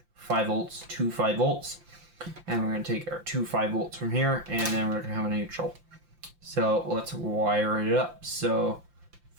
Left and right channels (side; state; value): left; late; 5.8 ms